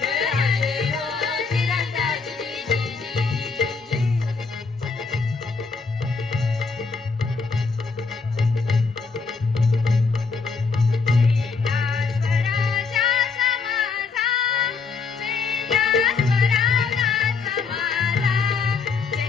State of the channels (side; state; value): right; quieter; 4.8 dB